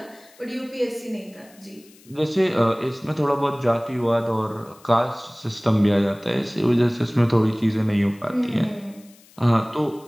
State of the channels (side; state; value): left; noise; hiss, 27 dB below the sound